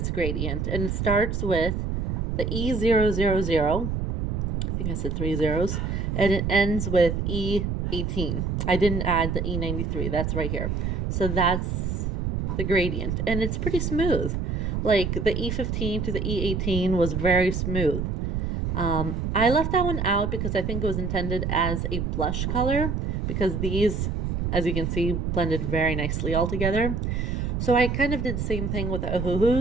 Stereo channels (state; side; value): noise; right; rumble, 1 dB below the sound